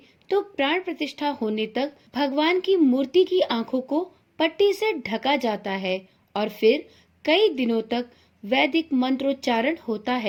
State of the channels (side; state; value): both; identical; correlation 1.00